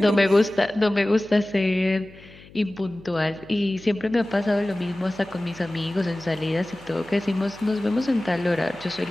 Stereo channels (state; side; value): noise; left; hum, 22 dB below the sound